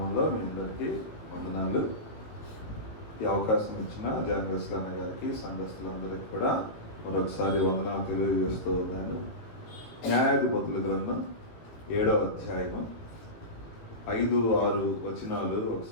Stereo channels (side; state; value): right; late; 18 ms